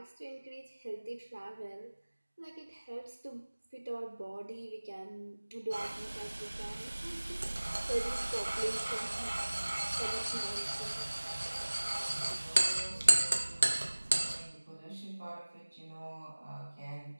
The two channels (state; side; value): inverted; both; correlation -1.00